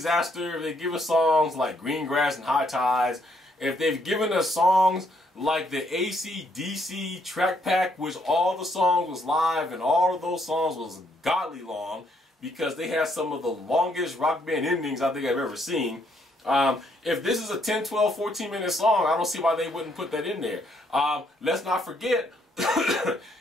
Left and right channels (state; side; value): normal; both; correlation 0.71